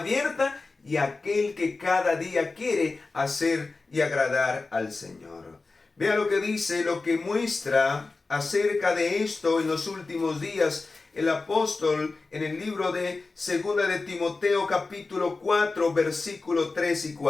y aquel que cada día quiere hacer y agradar al Señor. Vea lo que dice, lo que muestra acerca de esto en los últimos días el apóstol en el libro de 2 de Timoteo capítulo 4 versículo 3 y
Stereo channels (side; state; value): right; quieter; 3.8 dB